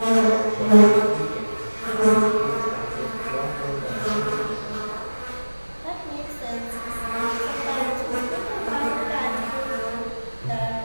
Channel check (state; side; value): inverted; both; correlation -1.00